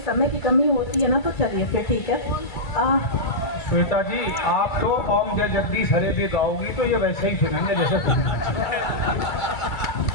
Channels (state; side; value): late; right; 2.3 ms